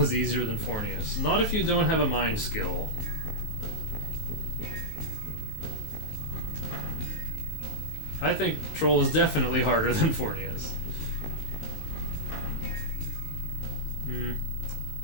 easier than Fornius. Not if you don't have a mind skill. I think Troll is definitely harder than Fornius.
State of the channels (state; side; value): late; right; 19 ms